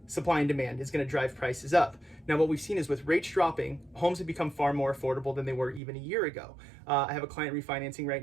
supply and demand is going to drive prices up. Now, what we've seen is with rates dropping, homes have become far more affordable than they were even a year ago. I have a client refinancing right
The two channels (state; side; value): drops out; left; at 5.8 s